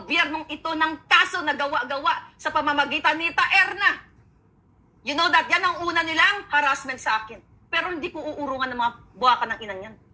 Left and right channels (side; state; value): both; identical; correlation 1.00